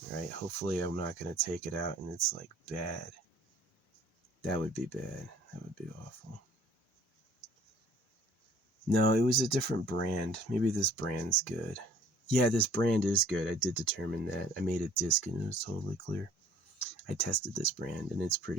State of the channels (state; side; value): normal; both; correlation 0.54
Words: right? Hopefully I'm not going to take it out and it's like bad. That would be bad. That would be awful. No, it was a different brand. Maybe this brand's good. Yeah, this brand is good. I did determine that. I made a disc and it was totally clear. I tested this brand and it's